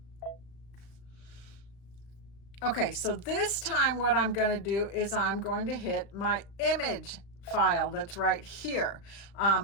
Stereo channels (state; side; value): late; right; 35 ms